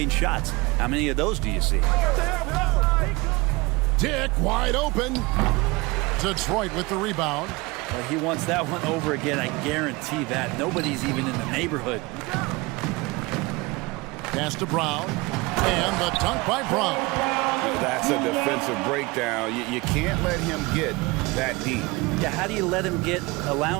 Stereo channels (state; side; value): quieter; left; 24.1 dB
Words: shots. How many of those do you see? Dick wide open. Detroit with the rebound. Well, he wants that one over again, I guarantee that. Nobody's even in the neighborhood. Pass to Brown. And the dunk by Brown. That's a defensive breakdown. You can't let him get that deep. Yeah, how do you let him get a